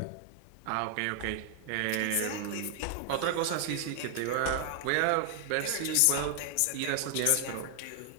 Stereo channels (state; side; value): different; both; correlation 0.00